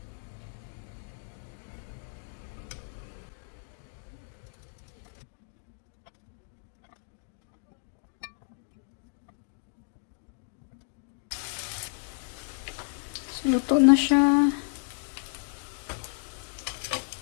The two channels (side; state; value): right; silent; digital silence